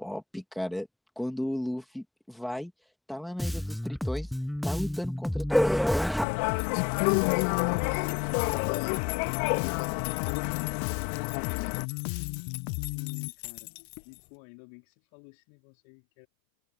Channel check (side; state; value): right; drops out; at 6.2 s